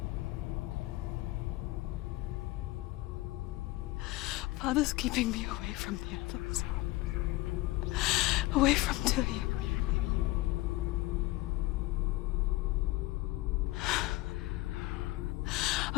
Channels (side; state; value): right; quieter; 19.4 dB